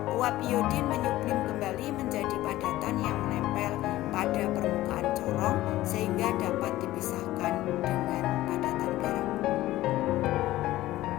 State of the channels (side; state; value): right; quieter; 16.0 dB